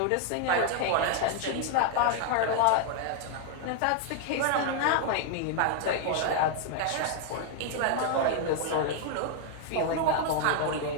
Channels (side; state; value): both; different; correlation 0.00